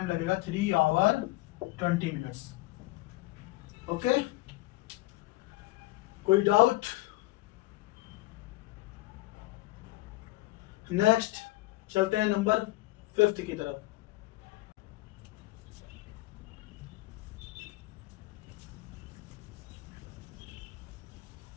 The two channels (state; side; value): quieter; right; 19.5 dB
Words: लगेगा 3 hour 20 minutes। ओके, कोई डाउट? नेक्स्ट चलते हैं नंबर 5 की तरफ।